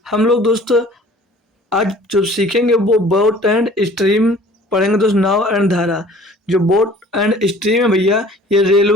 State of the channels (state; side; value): normal; both; correlation 0.50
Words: हम लोग आज जो सीखेंगे वो बोट एंड स्ट्रीम पढ़ेंगे दोस्त। नाव एंड धारा। जो बोट एंड स्ट्रीम है भैया, ये